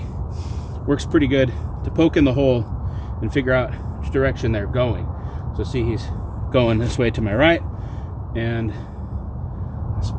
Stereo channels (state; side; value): identical; both; correlation 1.00